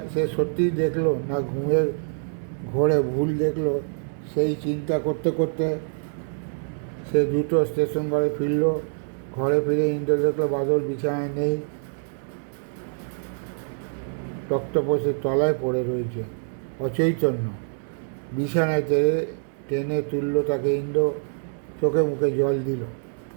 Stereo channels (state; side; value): silent; left; digital silence